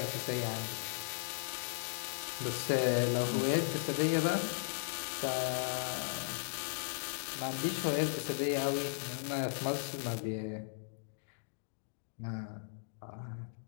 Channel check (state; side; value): silent; right; digital silence